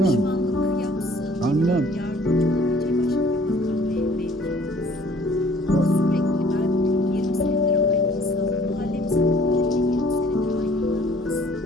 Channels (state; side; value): normal; both; correlation 0.56